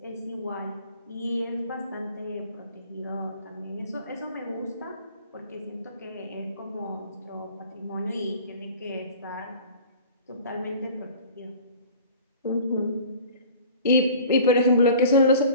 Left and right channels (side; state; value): both; inverted; correlation -0.45